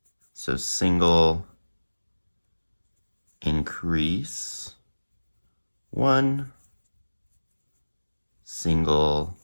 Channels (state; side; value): inverted; both; correlation -1.00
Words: So single, increase, 1, single,